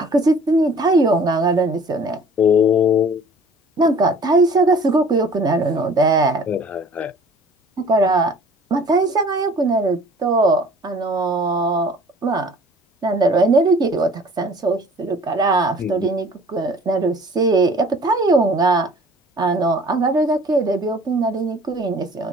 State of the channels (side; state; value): both; normal; correlation 0.49